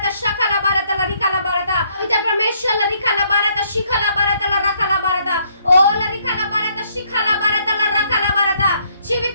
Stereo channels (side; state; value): both; inverted; correlation -0.69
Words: शखला बारता, लरिका ला बारता। इधर परमेश्वर लरिका ला बारता, शिखला बारता, लरका ला बारता। ओ लरिका ला बारता, शिखला बारता, लरका ला बारता। जीवित